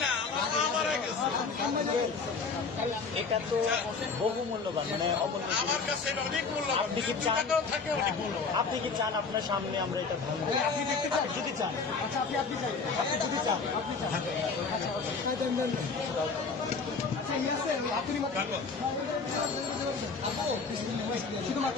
না, আমার মা মারা গেছে। এটা তো বহু মূল্যবান, মানে আমার কাছে এটা অনেক মূল্যবান। টাকাও থাকে অনেক মূল্যবান। আপনি কি চান আপনার সামনে আমরা এটা ভাঙবো? আপনি দেখতে চান? যদি চান, আচ্ছা আপনি চান, আপনি যদি চান, আপনি চান,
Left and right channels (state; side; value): quieter; right; 4.7 dB